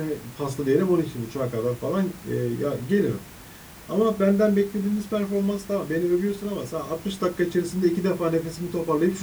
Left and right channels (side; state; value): both; identical; correlation 1.00